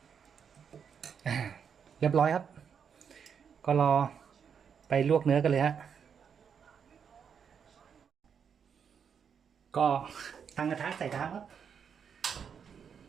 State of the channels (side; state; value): left; quieter; 7.1 dB